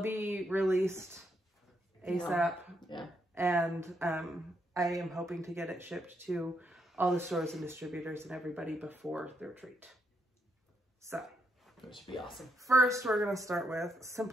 be released ASAP. Yeah. And I am hoping to get it shipped to all the stores and distributors and everybody before the retreat. So... Which should be awesome. First, we're going to start with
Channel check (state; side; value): normal; both; correlation 0.78